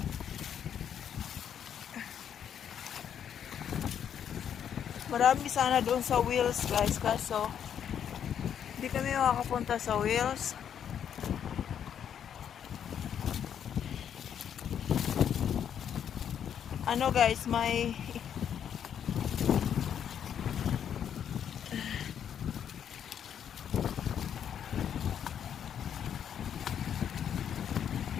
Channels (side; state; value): right; quieter; 8.8 dB